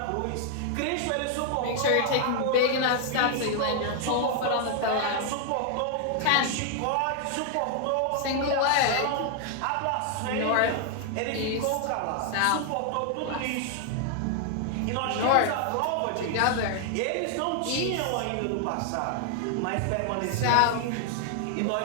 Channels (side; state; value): both; different; correlation 0.00